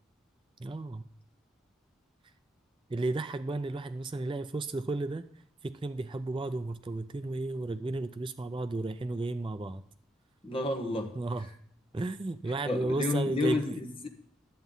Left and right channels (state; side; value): normal; both; correlation 0.79